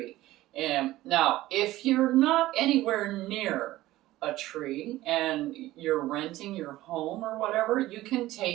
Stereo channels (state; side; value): quieter; left; 16.4 dB